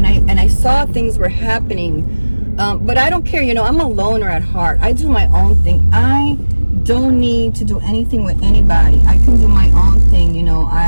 I saw things were happening, but I don't care, you know. I'm a loner at heart. I do my own thing. I don't need to do anything with anybody. I can do my own thing, you know.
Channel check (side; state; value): both; inverted; correlation -1.00